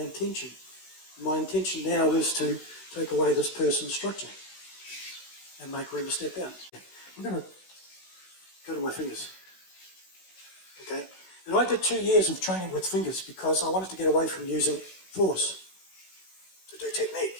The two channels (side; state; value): right; late; 16 ms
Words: intention. My intention now is to take away this person's structure and make room to step out. I'm going to go to my fingers. Okay? And I did 2 years of training with fingers because I wanted to get away from using force to do technique.